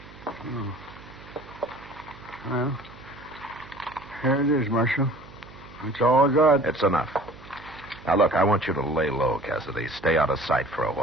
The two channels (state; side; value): noise; right; hum, 20 dB below the sound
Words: Oh. Well, here it is, Marshal. That's all I got. It's enough. Now, look, I want you to lay low, Cassidy. Stay out of sight for a